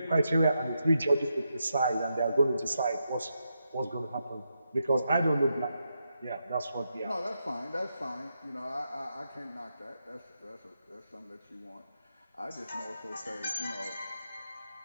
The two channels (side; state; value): both; inverted; correlation -0.84